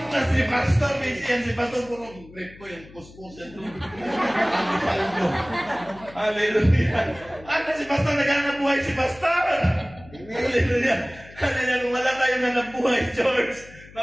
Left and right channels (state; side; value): noise; left; hum, 21 dB below the sound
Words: Na si Pastor, si Pastor puro grip ko yung kuskusan doon. Paldo. Hallelujah. Ano si Pastor, naghanap buhay si Pastor. Hallelujah. Hallelujah. Kung wala tayong hanap buhay, George,